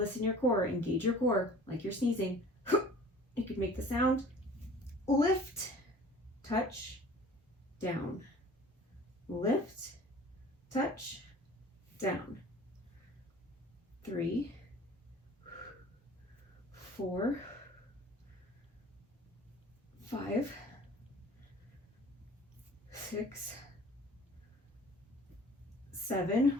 in your core. Engage your core like you're sneezing. You can make the sound. Lift, touch, down. Lift, touch, down. 3, 4, 5, 6, 7.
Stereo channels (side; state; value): both; normal; correlation 0.46